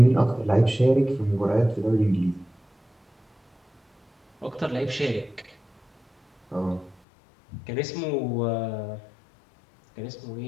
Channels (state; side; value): drops out; right; at 7.0 s